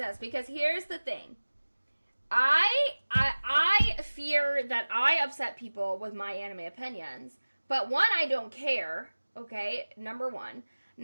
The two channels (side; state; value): both; inverted; correlation -1.00